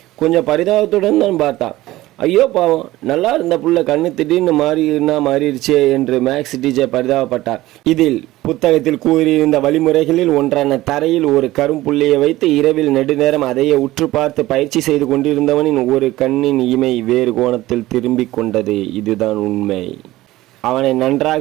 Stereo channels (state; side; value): quieter; left; 16.9 dB